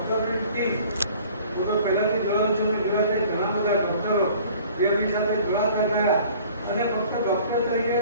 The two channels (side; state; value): both; inverted; correlation -0.50